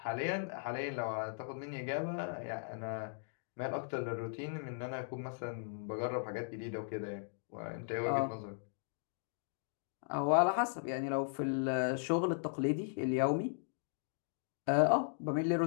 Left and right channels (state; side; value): silent; right; digital silence